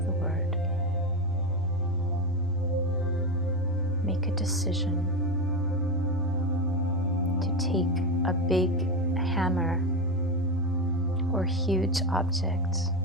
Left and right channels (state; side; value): normal; both; correlation 0.15